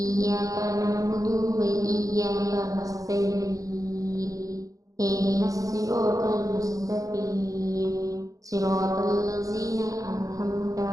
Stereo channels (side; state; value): left; late; 0.17 ms